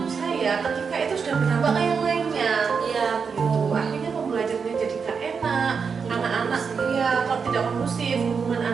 saya ketika itu sudah berdampak ke yang lainnya. Iya, Gitu. Akhirnya pembelajarannya jadi gak enak, anak-anak ya kalau tidak kondusif, hubungan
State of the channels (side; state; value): left; quieter; 5.8 dB